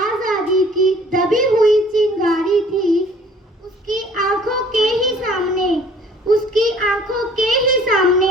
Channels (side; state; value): both; normal; correlation 0.54